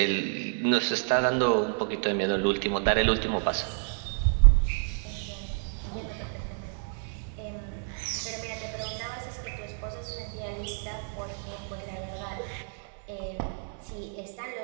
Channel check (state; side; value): silent; left; 58 dB below the other